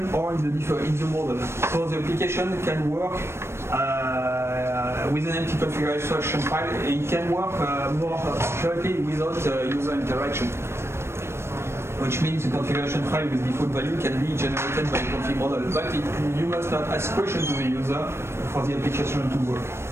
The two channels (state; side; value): late; left; 0.12 ms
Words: or in the model. So the application can work with an empty configuration file, it can work more accurately without user interaction. Which means the configuration file with default value can be generated by the config model, but you must not ask questions to the user for the application to work.